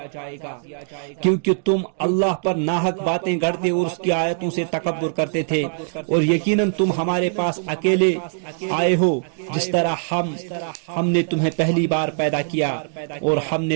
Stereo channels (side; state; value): left; silent; digital silence